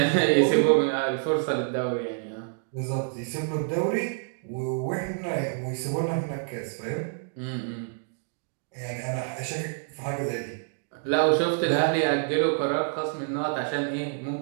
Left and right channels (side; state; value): left; silent; digital silence